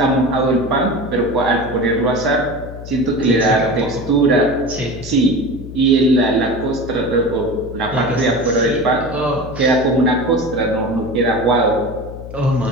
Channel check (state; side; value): noise; left; hum, 12 dB below the sound